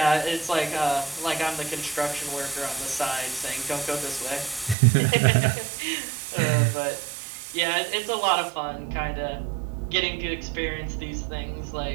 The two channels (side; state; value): left; drops out; at 4.8 s